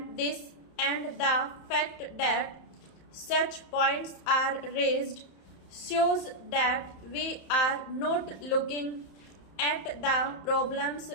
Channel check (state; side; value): late; right; 31 ms